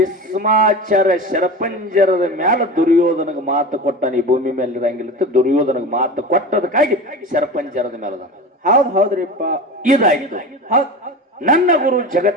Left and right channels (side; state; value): both; normal; correlation 0.29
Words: ಶರಪಂಜರದ ಮ್ಯಾಲ ದುರ್ಯೋಧನಗ ಮಾತು ಕೊಟ್ಟಾನ ಈ ಭೂಮಿ ಮೇಲೆ ಇರಂಗಿಲ್ಲ ದುರ್ಯೋಧನಗ ಮಾತು ಕೊಟ್ಟದಕ್ಕಾಗಿ ಶರಪಂಜರದ ಮೇಲದ ಹೌದ್ ಹೌದ್ರಿಪ್ಪ ಇದಾಯ್ತು ಹೌದ್ ನನ್ನ ಗುರು